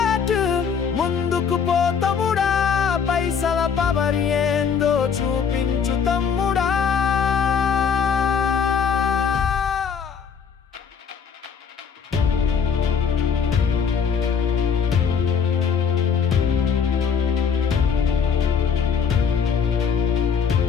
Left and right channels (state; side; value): quieter; right; 6.7 dB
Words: ముందుకు పో తమ్ముడా. పైసల పవర్ ఏందో చూపించు తమ్ముడా.